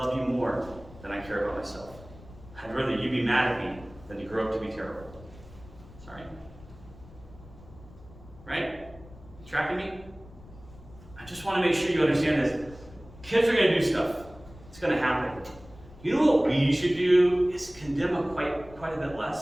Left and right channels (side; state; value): left; noise; rumble, 20 dB below the sound